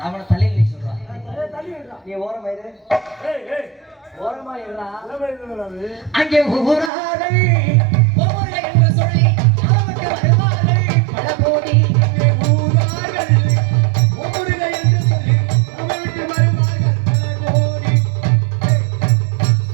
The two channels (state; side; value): drops out; left; at 6.9 s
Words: அவனை தள்ளி நீ சொல்றான். நீ ஓரமா இரு. ஓரமா இருடா. அங்கே ஊராரை